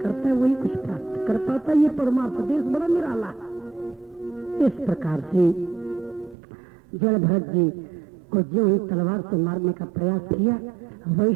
करता है, वही कुछ प्राप्त कर पाता है। ये परमार्थ देश बड़ा निराला। इस प्रकार से जड़ भरत जी को जो ही तलवार से मारने का प्रयास किया,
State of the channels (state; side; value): drops out; left; at 6.4 s